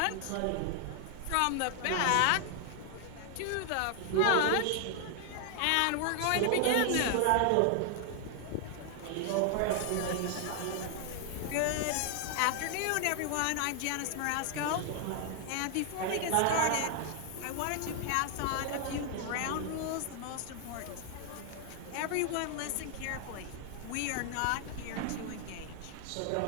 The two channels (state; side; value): different; both; correlation 0.00